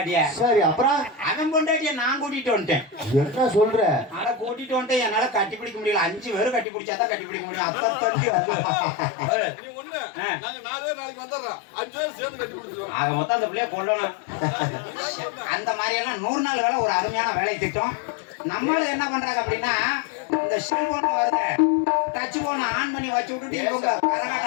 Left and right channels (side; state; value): right; drops out; at 6.7 s